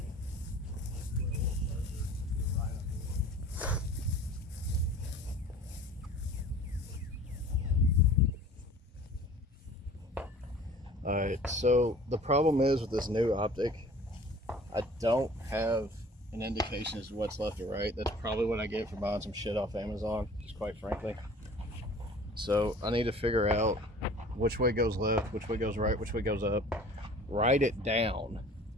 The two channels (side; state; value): both; normal; correlation 0.46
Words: Alright, so the problem is with this new optic, I don't have an indication as to what's left or right. That's probably what I get for buying some shit off Amazon, just quite frankly. So I need to figure out which way goes left, which way goes right, which way goes up, write it down,